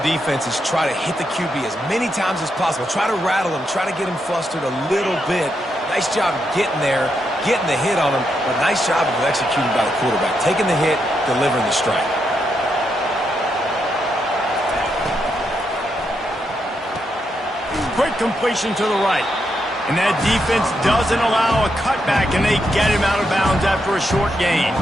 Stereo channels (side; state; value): both; normal; correlation 0.82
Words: defense is try to hit the QB as many times as possible. Try to rattle him, try to get him flustered a little bit. Nice job getting there, getting the hit on him, but nice job of executing by the quarterback. Taking the hit, delivering the strike. Quick completion to the right. And that defense doesn't allow a cutback, and they get him out of bounds after a short gain.